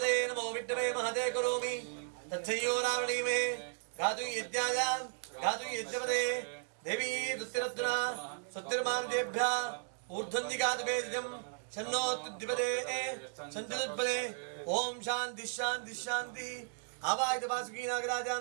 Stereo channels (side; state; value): left; silent; 54 dB below the other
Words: नमो विष्णवे महते करोमि तच्छयो रावणीमे गातु यज्ञाय गातु यज्ञपदे देवी दुत्तिरत्ना सत्तिर्मानदेभ्यः ऊर्ध्वन्दिगातु वेदिजं शन्नो तुद्दिपदे सन्तिदुत्पदे ओम शांति शांति शांति आवाज वासुकी नागराजान